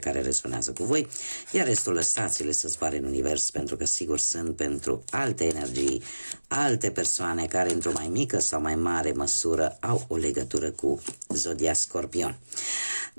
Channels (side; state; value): both; inverted; correlation -1.00